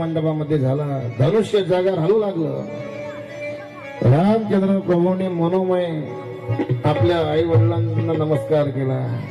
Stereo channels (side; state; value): both; identical; correlation 1.00